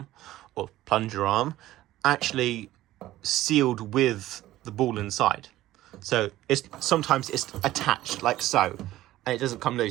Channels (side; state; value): left; quieter; 15.2 dB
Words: or plunger arm, actually sealed with the ball inside. So sometimes it's attached like so, and it doesn't come